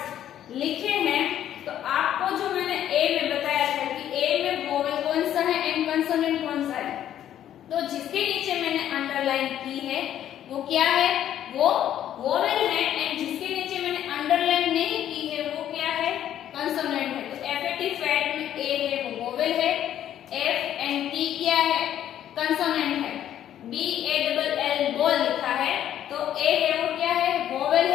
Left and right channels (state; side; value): quieter; right; 11.1 dB